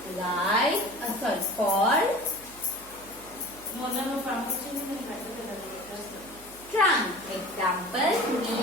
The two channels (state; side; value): noise; right; hum, 22 dB below the sound